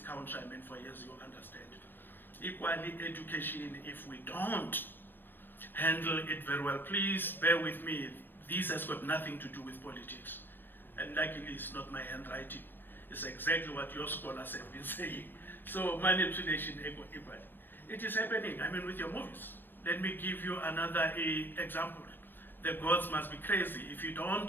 for years, you understand. Equally, education, if we don't handle it very well, please bear with me. This has got nothing to do with politics. And luckily, it's not my handwriting. It's exactly what your scholars have been saying. So manipulation equally. It is happening, with your movies. Let me give you another example. The gods must be crazy. If you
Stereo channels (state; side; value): late; right; 0.095 ms